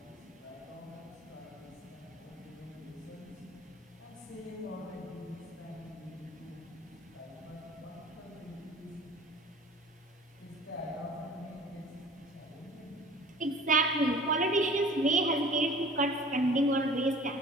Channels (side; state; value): both; normal; correlation 0.45